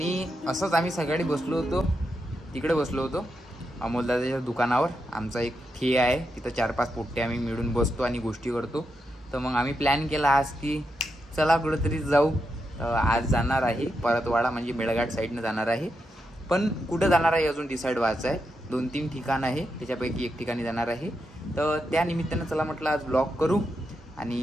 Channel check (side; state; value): both; normal; correlation 0.85